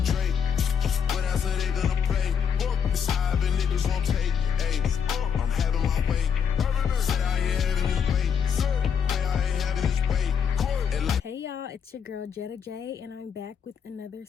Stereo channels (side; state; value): right; quieter; 7.2 dB